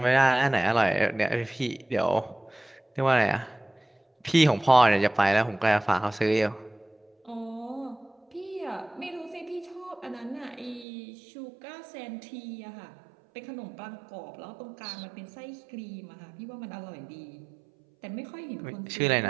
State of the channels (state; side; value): drops out; left; at 10.9 s